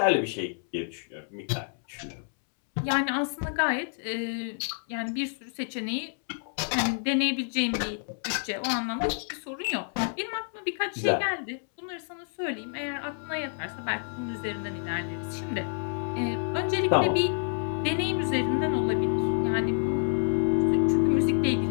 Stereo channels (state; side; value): silent; right; 59 dB below the other